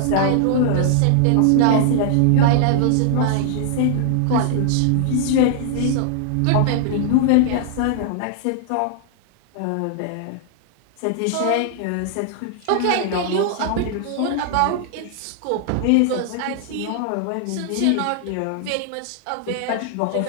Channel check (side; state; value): both; different; correlation -0.01